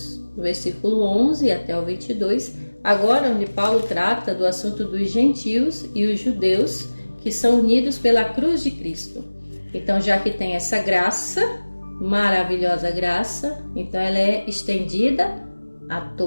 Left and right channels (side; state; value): both; inverted; correlation -1.00